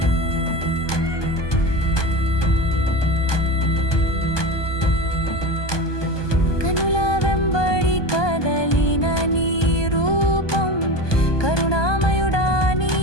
కనుల వెంబడి కదలిన నీ రూపం కరుణామయుడా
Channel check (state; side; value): late; right; 1.2 ms